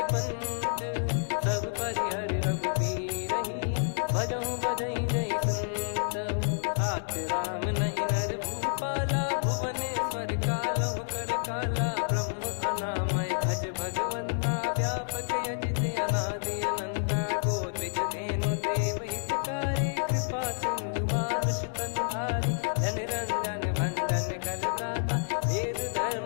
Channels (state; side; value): silent; right; digital silence